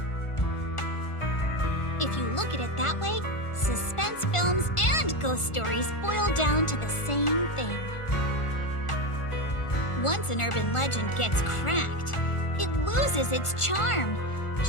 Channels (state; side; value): late; right; 1.4 ms